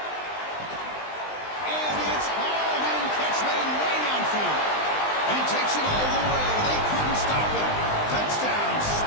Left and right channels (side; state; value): right; late; 20 ms